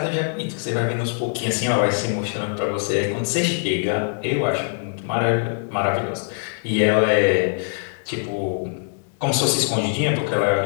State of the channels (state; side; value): silent; right; digital silence